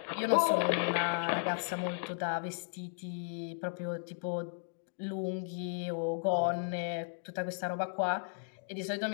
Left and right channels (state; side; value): silent; right; digital silence